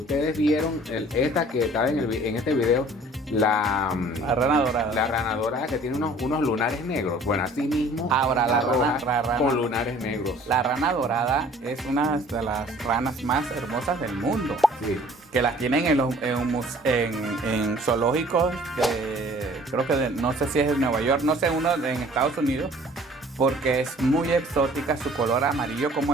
vieron esta que estaba en este video, La rana dorada. la rana dorada que tiene unos lunares negros. Bueno, así mismo. Ahora, la roja rana- con lunares negros. La rana dorada es una de las ranas más hermosas del mundo. Sí. Que las tienen en zoológicos creo que no sé si es de Nueva York, no sé, uno en Estados Unidos, porque es muy exótica, su color amarillo como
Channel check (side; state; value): both; normal; correlation 0.52